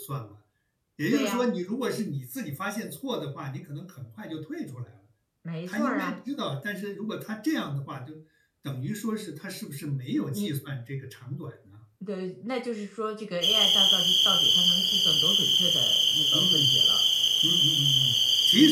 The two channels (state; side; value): identical; both; correlation 1.00